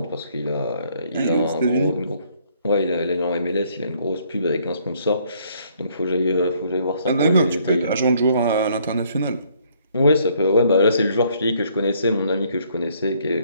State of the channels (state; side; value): inverted; both; correlation -0.65